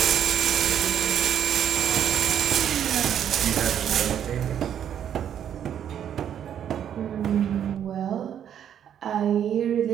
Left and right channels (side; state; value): left; quieter; 9.5 dB